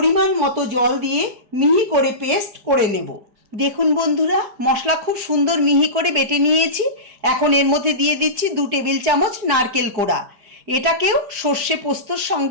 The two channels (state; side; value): late; left; 4.9 ms